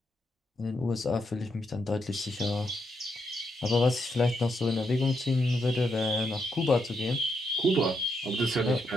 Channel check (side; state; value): both; normal; correlation 0.80